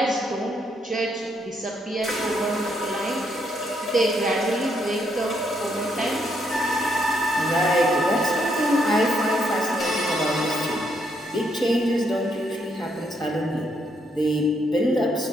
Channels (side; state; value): both; normal; correlation 0.75